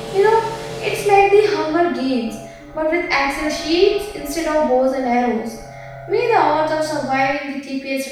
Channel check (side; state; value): both; identical; correlation 1.00